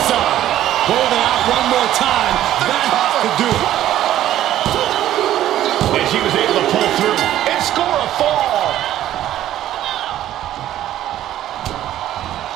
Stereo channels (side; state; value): left; quieter; 12.7 dB